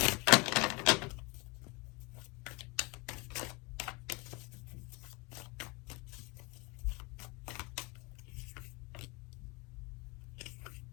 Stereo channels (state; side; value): quieter; right; 27.8 dB